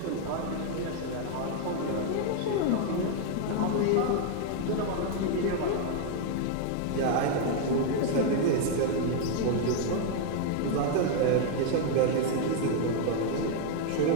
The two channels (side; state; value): both; different; correlation 0.00